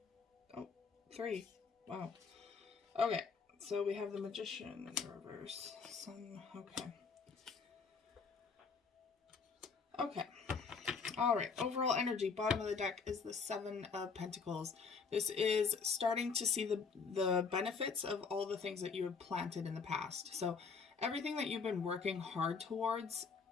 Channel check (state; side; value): quieter; right; 5.3 dB